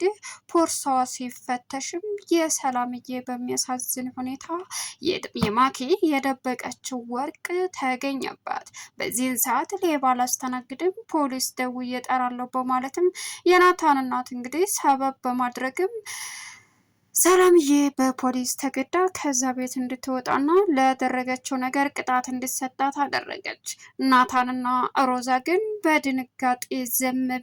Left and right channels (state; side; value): identical; both; correlation 1.00